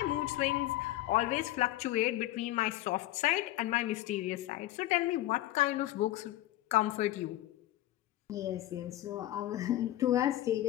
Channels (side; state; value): right; quieter; 15.3 dB